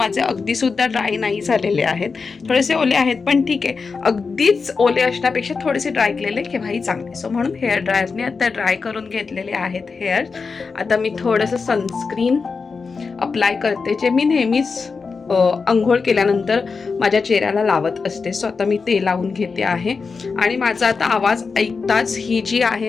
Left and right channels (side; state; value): right; quieter; 4.8 dB